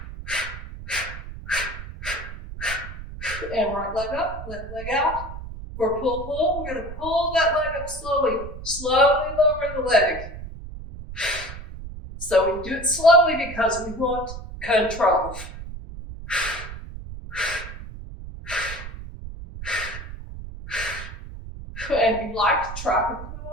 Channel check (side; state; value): right; noise; rumble, 11 dB below the sound